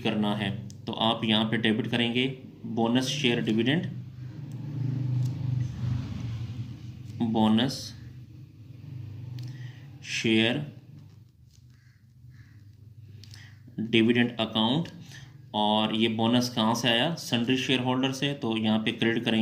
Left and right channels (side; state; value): both; identical; correlation 1.00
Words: करना है। तो आप यहाँ पे डेबिट करेंगे bonus share dividend, bonus share dividend account, और ये बोनस कहाँ से आया? सन्ड्री शेयर होल्डर से, तो यहाँ पे क्रेडिट